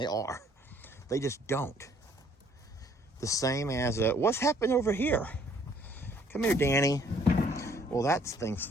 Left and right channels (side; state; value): both; normal; correlation 0.61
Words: are. They just don't. The same as, what's happened over here? Come here, Danny. Well, that thing's